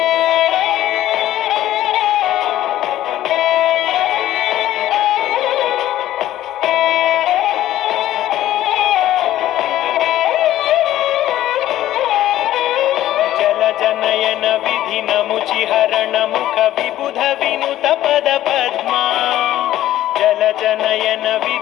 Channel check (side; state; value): right; quieter; 13.6 dB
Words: जनयन विधिनमुचिहरण मुख विबुध विनुत पद पद्मा जल जनयन